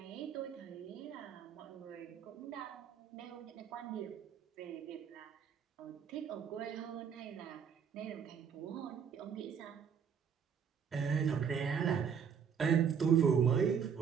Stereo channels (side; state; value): left; quieter; 7.3 dB